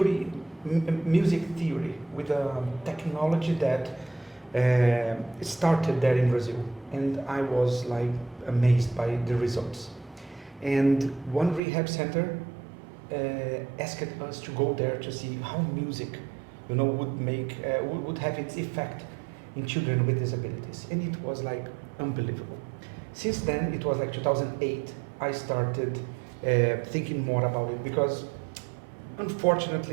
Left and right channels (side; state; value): left; drops out; at 11.6 s